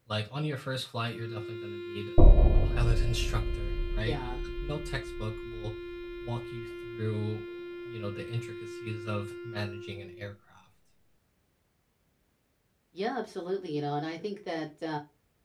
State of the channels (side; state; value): both; identical; correlation 1.00